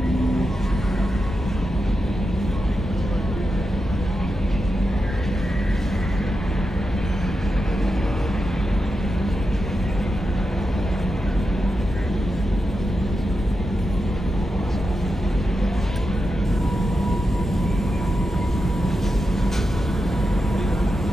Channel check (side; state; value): both; normal; correlation 0.88